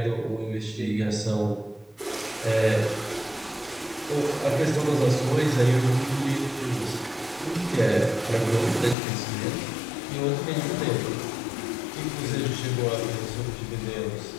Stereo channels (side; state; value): right; drops out; at 9.0 s